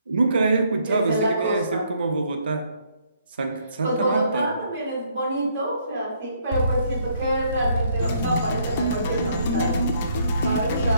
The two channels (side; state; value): both; inverted; correlation -0.68